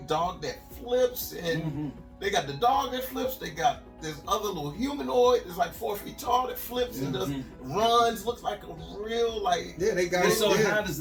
dog that flips, and they got the dog that flips. They got this other little humanoid that's like 4 feet tall that flips and just runs. Looks like a real they got it. So how does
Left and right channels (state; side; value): identical; both; correlation 1.00